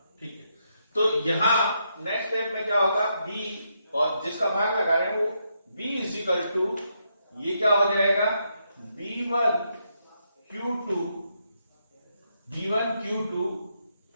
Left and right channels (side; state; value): both; inverted; correlation -0.79